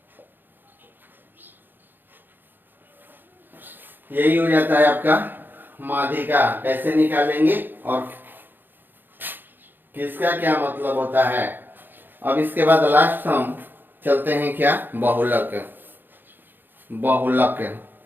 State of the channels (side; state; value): left; late; 0.094 ms